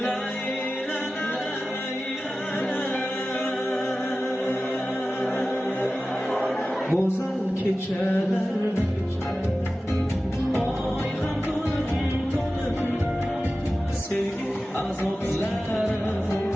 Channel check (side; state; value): both; normal; correlation 0.95